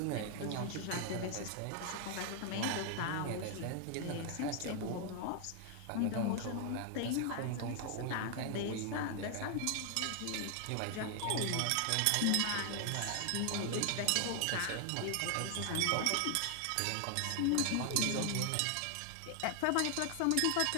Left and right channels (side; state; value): both; different; correlation 0.00